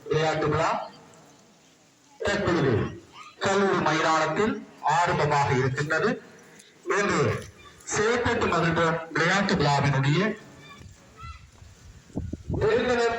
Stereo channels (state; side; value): identical; both; correlation 1.00